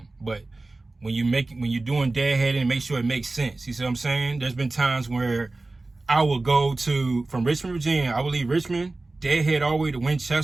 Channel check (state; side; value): quieter; left; 3.2 dB